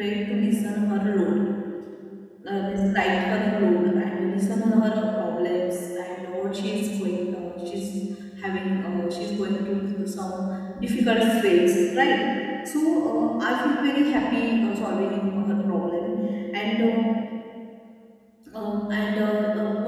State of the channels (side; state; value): both; identical; correlation 1.00